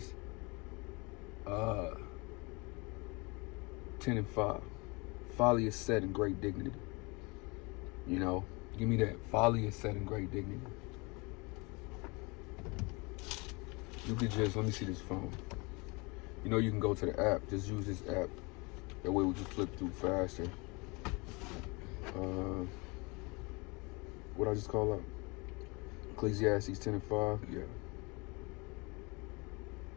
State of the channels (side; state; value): right; quieter; 27.7 dB